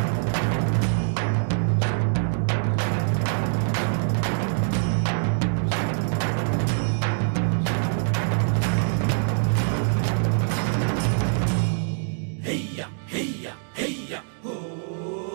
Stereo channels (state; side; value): silent; left; digital silence